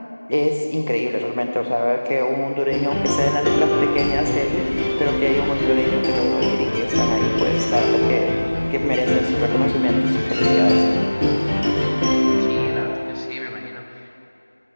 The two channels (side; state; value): both; inverted; correlation -1.00